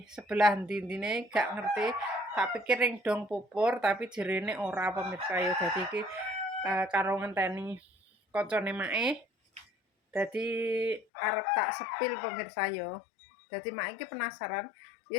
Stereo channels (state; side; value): drops out; right; at 11.1 s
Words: sebelah ndi-ndine gak ngerti. Tak pikir ring dong pupur tapi jerene ora pemirsa ya. Dadi iki karo ngenteni kancane mae. Dadi arep tak sepil pemirsa ya. Dadi mak iki penasaran.